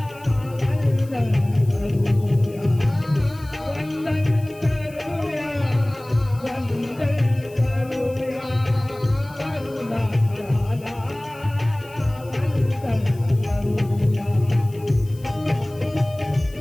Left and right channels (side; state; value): left; noise; hiss, 24 dB below the sound